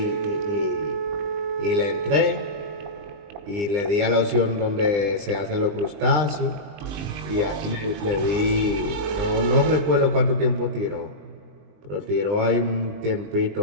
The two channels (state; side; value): late; left; 20 ms